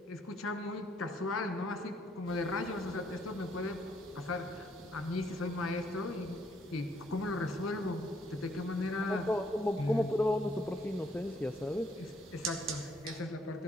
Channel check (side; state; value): both; normal; correlation 0.69